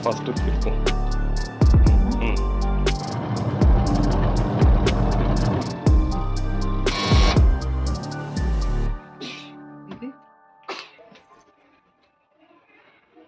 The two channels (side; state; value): both; identical; correlation 1.00